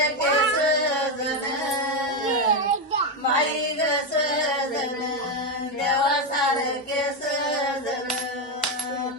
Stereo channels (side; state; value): both; normal; correlation 0.08